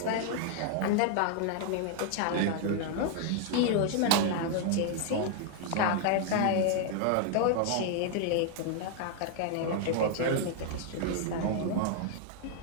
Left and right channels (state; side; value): different; both; correlation 0.00